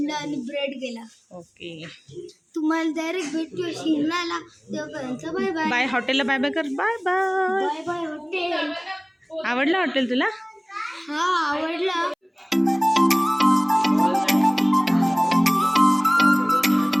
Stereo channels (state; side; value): identical; both; correlation 1.00